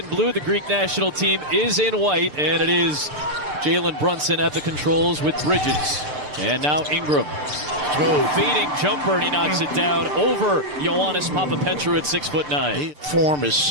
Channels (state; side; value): late; left; 6.8 ms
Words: blue. The Greek national team is in white, and it is Jalen Brunson at the controls with Bridges. And now Ingram. Fading jumper, and he knocks it down over Ioannis Papapetrou at 6'9". Form is